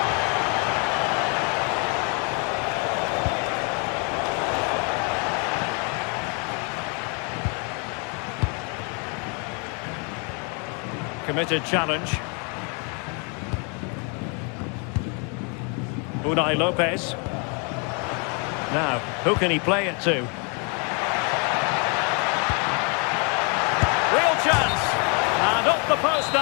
Committed challenge. Unai Lopez. Now, who can he play it to? Real chance! And off the post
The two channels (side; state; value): right; quieter; 35.5 dB